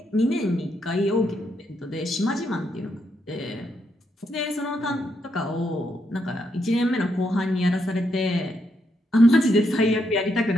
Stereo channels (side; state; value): both; normal; correlation 0.79